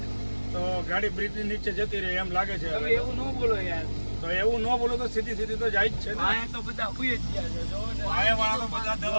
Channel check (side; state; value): both; inverted; correlation -1.00